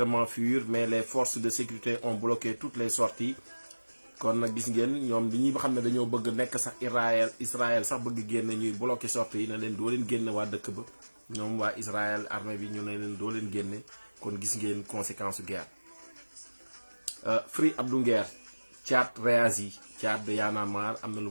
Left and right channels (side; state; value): both; inverted; correlation -1.00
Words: fuir, mais les forces de sécurité ont bloqué toutes les sorties. kon nag gis ngeen ñoom li ñuy xam ne dañoo bëgg nekk sax Israël sax bëgg génn ñuy bloqué sorties yi ne leen doo leen génne waa dëkk ba ñoom waa Israël armée bi ñu ne leen doo leen génne. kon gis ngeen conséquence su guerre. Free Abdou Nguer, Thiat réagi, Thiat de Y'en a marre am na lu